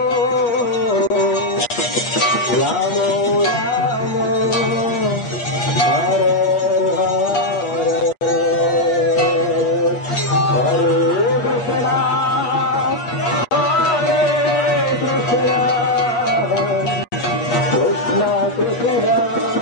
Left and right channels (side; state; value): right; late; 8.4 ms